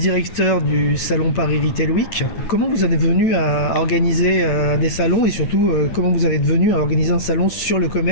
du salon Paris Retail Week. Comment vous en êtes venu à organiser des salons et surtout, comment vous en êtes venu à organiser un salon sur le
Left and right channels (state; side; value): late; right; 9.0 ms